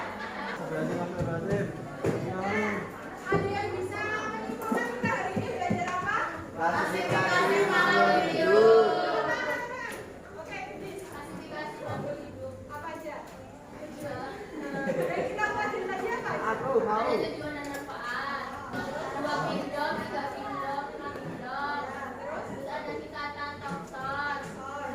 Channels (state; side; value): identical; both; correlation 1.00